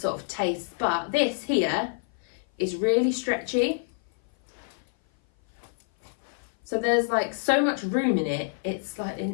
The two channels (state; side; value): silent; right; 56 dB below the other